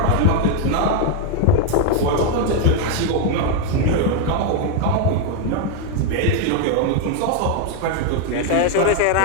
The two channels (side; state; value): both; different; correlation 0.01